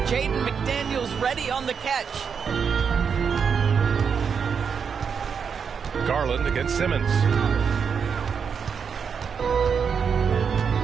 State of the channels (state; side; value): quieter; left; 6.5 dB